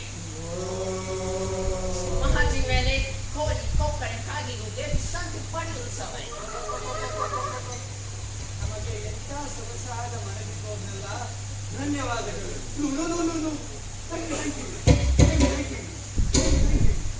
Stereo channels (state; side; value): identical; both; correlation 1.00